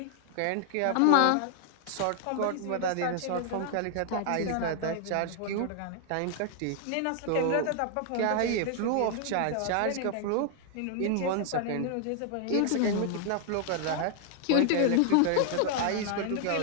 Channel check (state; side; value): different; both; correlation 0.00